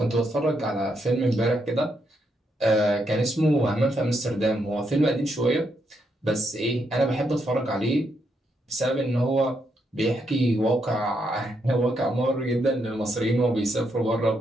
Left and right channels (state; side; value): normal; both; correlation 0.79